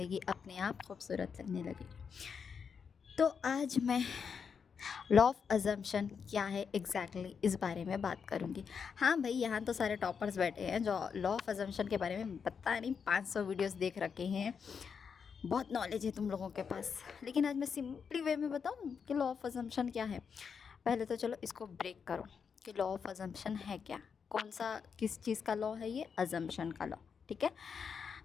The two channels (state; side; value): quieter; right; 6.3 dB